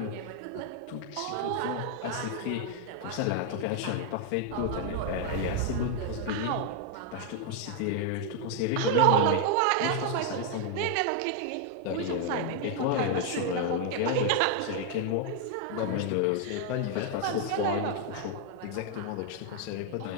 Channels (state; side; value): different; both; correlation 0.00